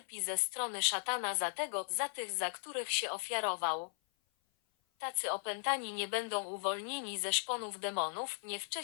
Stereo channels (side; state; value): right; silent; 53 dB below the other